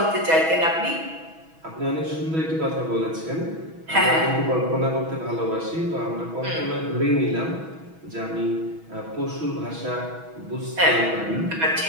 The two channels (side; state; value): left; late; 6.2 ms